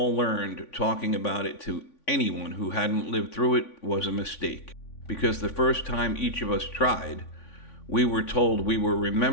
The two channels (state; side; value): late; right; 3.5 ms